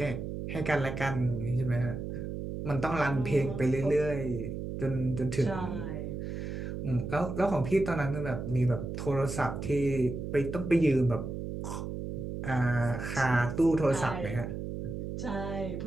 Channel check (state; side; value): noise; right; hum, 5 dB below the sound